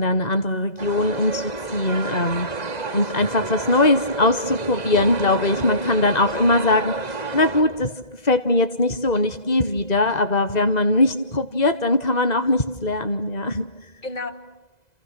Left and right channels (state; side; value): late; right; 2.0 ms